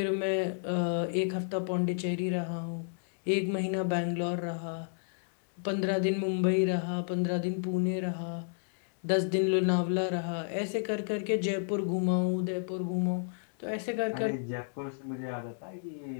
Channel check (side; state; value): right; silent; digital silence